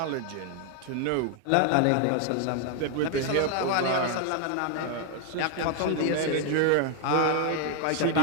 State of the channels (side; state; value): both; different; correlation 0.00